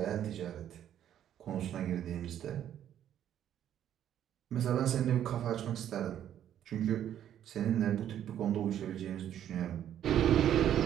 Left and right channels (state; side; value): quieter; left; 10.6 dB